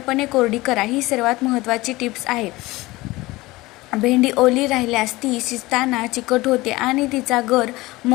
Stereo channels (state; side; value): quieter; right; 20.2 dB